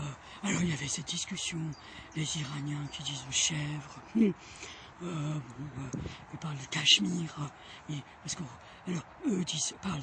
alors il y avait cette discussion, les Iraniens qui disent chèvre. Ils parlent du Cachemire, et parce que, alors eux parlent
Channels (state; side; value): identical; both; correlation 1.00